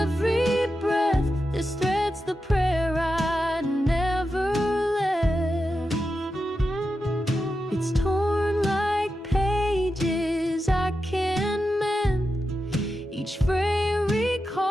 breath. This thread's the prayer I never left. It's torn like pages I can't mend. Each frame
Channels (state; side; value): normal; both; correlation 0.89